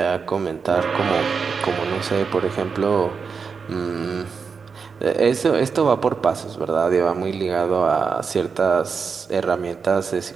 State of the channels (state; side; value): quieter; left; 5.6 dB